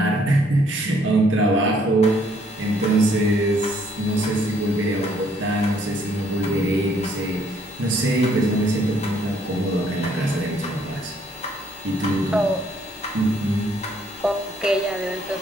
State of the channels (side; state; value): both; normal; correlation 0.66